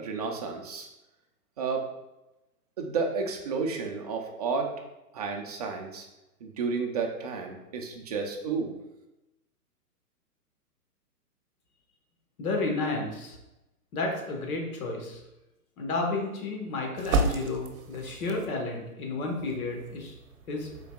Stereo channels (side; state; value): both; normal; correlation 0.07